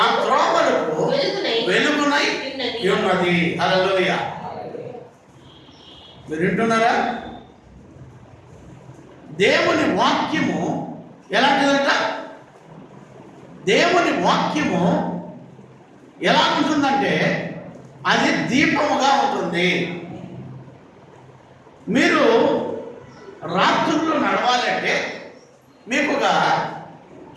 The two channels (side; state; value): both; identical; correlation 1.00